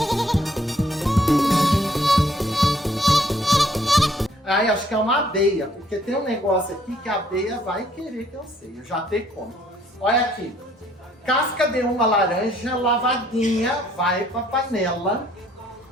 Aí acho que é uma abelha, porque tem um negócio aqui que a abelha vai querer que eu sei. Eu já tenho como. Olha aqui. Casca de uma laranja lavadinha, vai pra panela.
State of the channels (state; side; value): normal; both; correlation 0.64